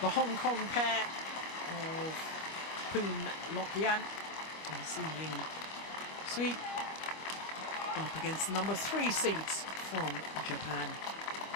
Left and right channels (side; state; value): right; late; 25 ms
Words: The Hong Kong pair of Poon Yan and Ying Suet up against the number 3 seeds from Japan,